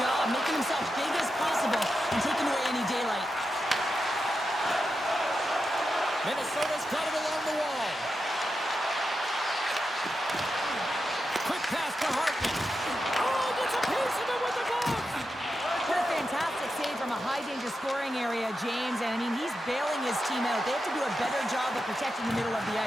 making himself big as possible and taking away any daylight. Minnesota's got it along the wall. Quick pass to Hartman. Gets a piece of it with the glove. What a fantastic save from a high-danger scoring area, James. And, I mean, he's bailing his team out. They have to do a better job of protecting the middle of the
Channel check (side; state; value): both; normal; correlation 0.88